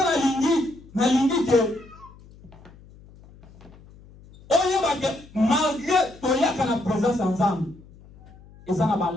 na lingi que malgré toyaka na présence ensemble, ils ont un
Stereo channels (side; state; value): left; noise; hum, 23 dB below the sound